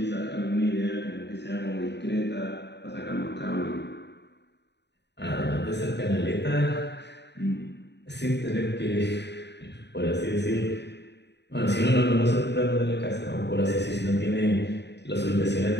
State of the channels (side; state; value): right; late; 0.50 ms